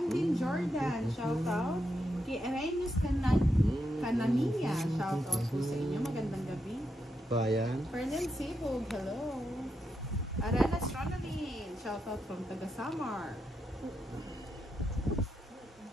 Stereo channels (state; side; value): normal; both; correlation 0.84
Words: Dean Jordan, shoutout. Kay Arenas Canania, shoutout po sa inyo. Magandang gabi. Bayan. Fernand Sibog, hello. Aranas Ronaldin, shoutout from Tagasamar.